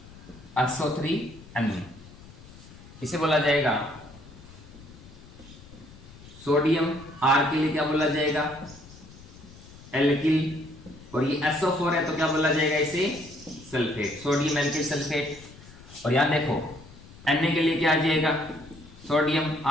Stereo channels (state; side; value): noise; left; rumble, 20 dB below the sound